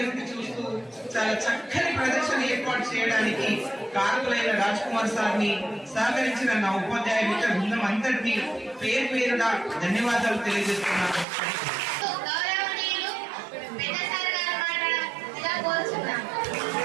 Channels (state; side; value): drops out; left; at 11.2 s